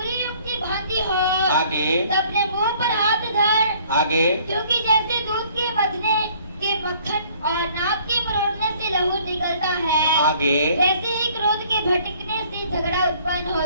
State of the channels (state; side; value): inverted; both; correlation -0.58